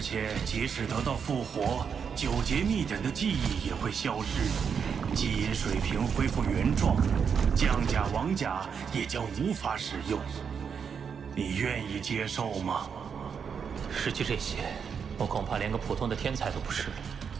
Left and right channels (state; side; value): quieter; left; 6.7 dB